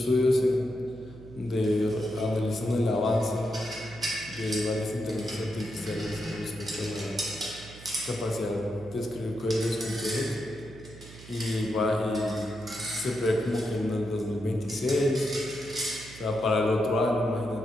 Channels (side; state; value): right; noise; hum, 17 dB below the sound